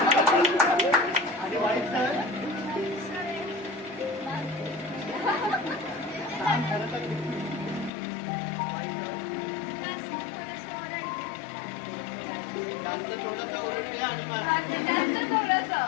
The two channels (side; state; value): right; drops out; at 7.9 s